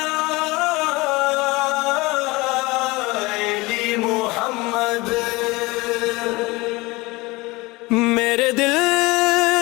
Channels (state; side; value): quieter; right; 22.8 dB